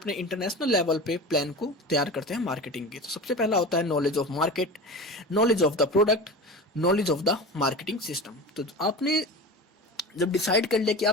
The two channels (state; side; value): normal; both; correlation 0.31